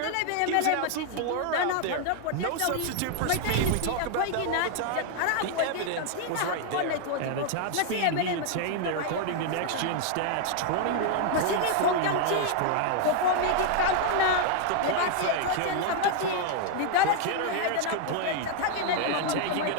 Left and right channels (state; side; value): different; both; correlation 0.00